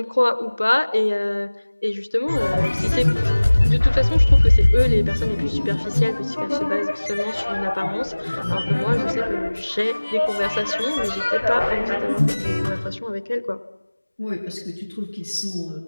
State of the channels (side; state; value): both; inverted; correlation -1.00